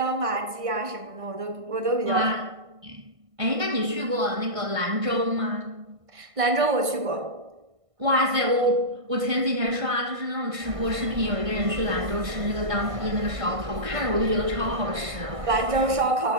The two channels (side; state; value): left; late; 1.5 ms